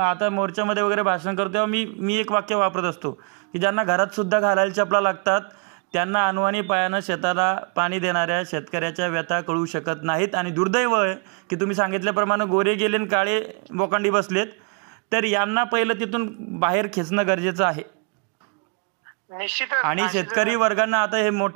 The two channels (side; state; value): left; quieter; 36.3 dB